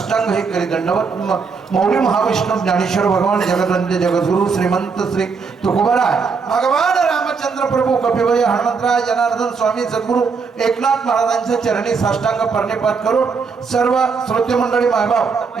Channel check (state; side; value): quieter; left; 5.2 dB